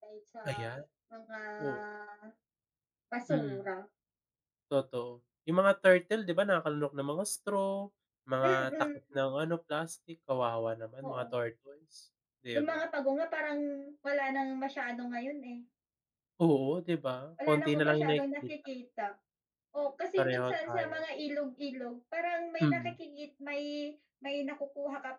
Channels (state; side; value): identical; both; correlation 1.00